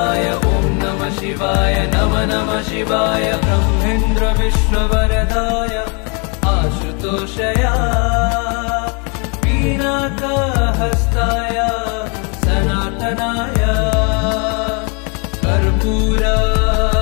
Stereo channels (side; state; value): right; quieter; 34.6 dB